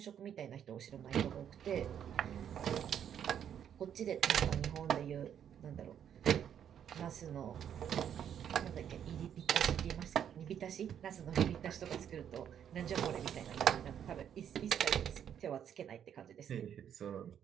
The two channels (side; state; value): left; quieter; 9.1 dB